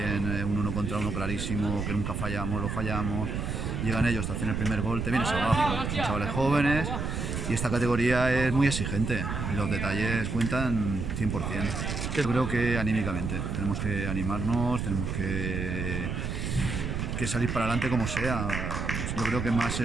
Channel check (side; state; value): right; noise; rumble, 3 dB below the sound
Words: un 1 contra 1 clarísimo que nunca fallamos, lo fallamos, llegan ellos, te hacen el primer gol, te vienes abajo, son chavales jóvenes y esta categoría es muy exigente y los detalles cuentan 100%. Yo creo que anímicamente, tenemos que animarnos, tenemos que salir para adelante como sea. Yo creo que